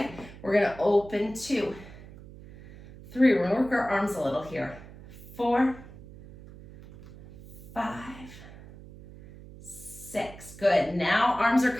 We're gonna open 2, 3, we're gonna work our arms a little here. 4, 5, 6, good. Now arms are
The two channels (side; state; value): right; noise; hum, 18 dB below the sound